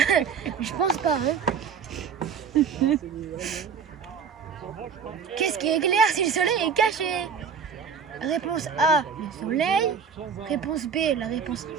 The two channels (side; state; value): left; quieter; 6.4 dB